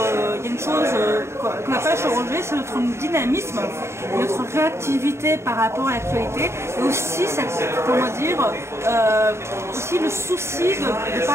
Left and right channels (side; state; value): left; late; 0.13 ms